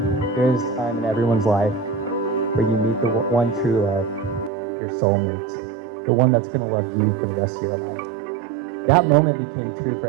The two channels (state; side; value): drops out; left; at 4.5 s